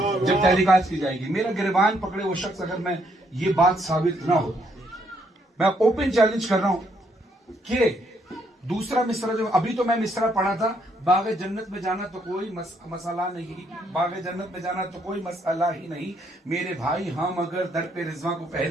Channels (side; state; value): both; normal; correlation 0.72